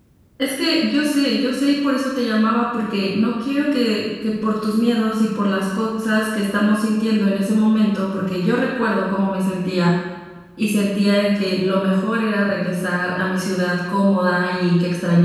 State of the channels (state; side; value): identical; both; correlation 1.00